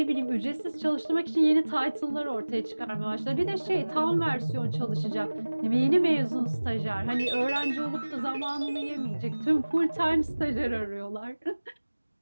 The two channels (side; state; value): both; inverted; correlation -1.00